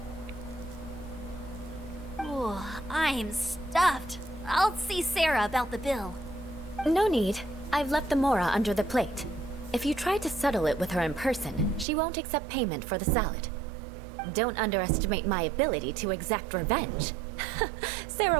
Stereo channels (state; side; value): drops out; left; at 11.9 s